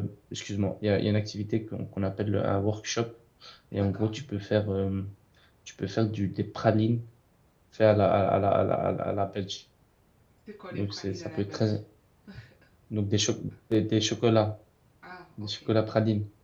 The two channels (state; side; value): identical; both; correlation 1.00